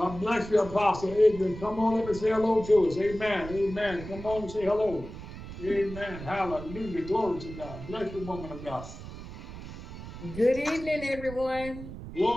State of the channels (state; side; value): noise; right; rumble, 12 dB below the sound